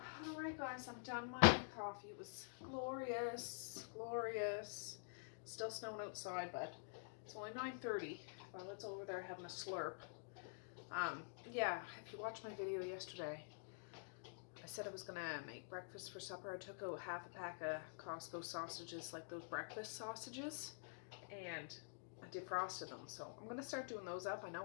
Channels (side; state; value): right; silent; digital silence